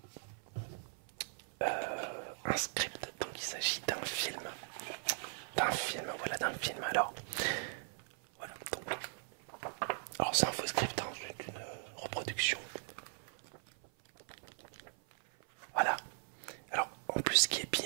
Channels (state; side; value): silent; left; 52 dB below the other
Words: un script, donc il s'agit d'un film. Voilà, d'un film. Alors, voilà, donc... Alors c'est un faux script, hein, c'est une reproduction. Voilà. Alors en plus ce qui est